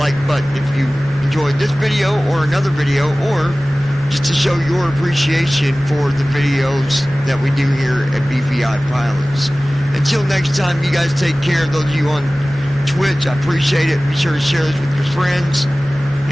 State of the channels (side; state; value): both; normal; correlation 0.98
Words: button if you enjoyed this video or another video, or just to show your appreciation for the videos that we do here at BVI Pilots. Until next time, you guys take care. Those of you on Twitch, I appreciate it. Be sure to share this with your friends.